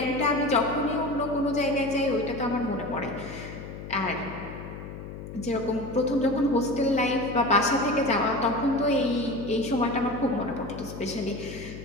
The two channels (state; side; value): noise; left; hum, 11 dB below the sound